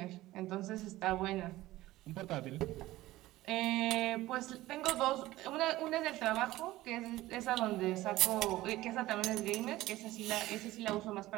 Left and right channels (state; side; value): quieter; left; 16.9 dB